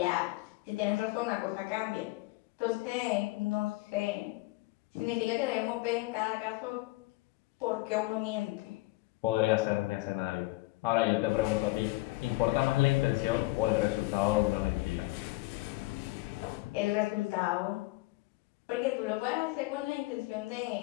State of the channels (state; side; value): quieter; right; 21.3 dB